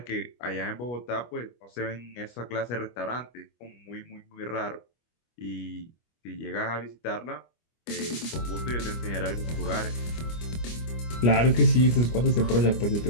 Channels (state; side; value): late; right; 25 ms